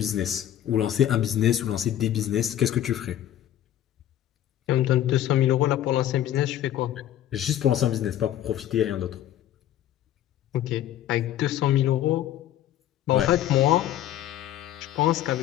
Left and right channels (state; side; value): quieter; right; 12.0 dB